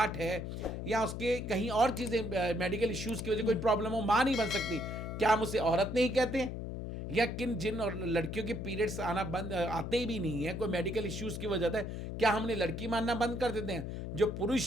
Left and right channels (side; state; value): left; noise; hum, 6 dB below the sound